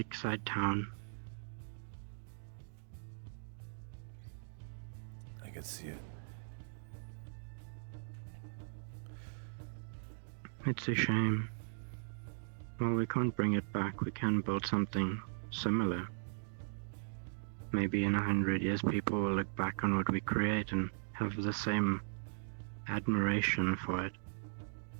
town. I can see it. It's a shame. Well, we can't bring it back. We can build something similar. Maybe in 100 years people will look back on what we create and have the same admiration for it.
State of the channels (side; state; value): left; silent; digital silence